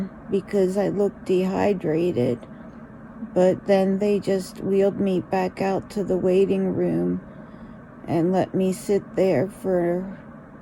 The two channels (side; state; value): both; identical; correlation 1.00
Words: because I looked dehydrated. But then they just wheeled me back out to the waiting room and let me sit there for